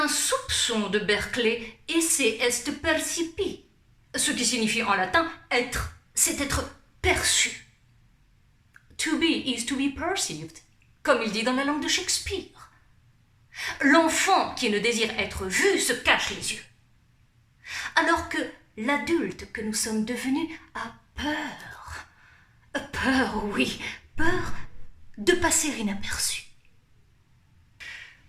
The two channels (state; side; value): identical; both; correlation 1.00